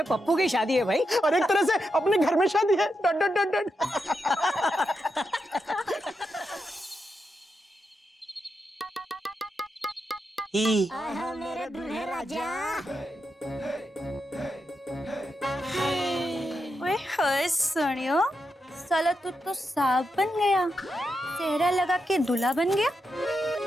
पप्पू की शादी है भाई। और एक तरह से अपने घर में शादी है डॉट डॉट डॉट डॉट। ही ओए होए सोनियो, साला तू तो सांप बन गया, सेहरा लगा के दूल्हा बन गया।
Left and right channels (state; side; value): normal; both; correlation 0.86